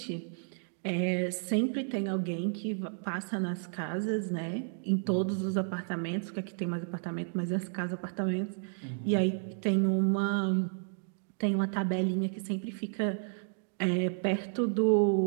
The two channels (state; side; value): silent; left; digital silence